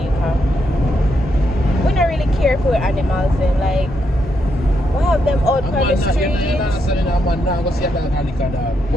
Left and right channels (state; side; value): normal; both; correlation 0.80